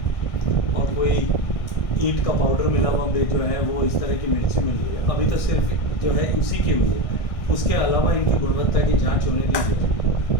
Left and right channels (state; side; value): late; right; 1.6 ms